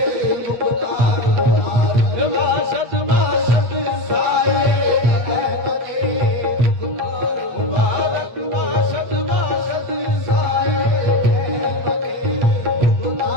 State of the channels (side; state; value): left; late; 8.6 ms